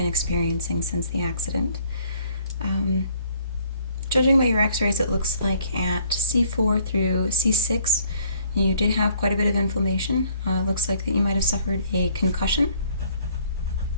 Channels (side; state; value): both; inverted; correlation -0.61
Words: experiencing since the accident. Judging by your x-rays, it looks like at C4 through C6, you did have quite a bit of inflammation. It looks like that you might have suffered a concussion.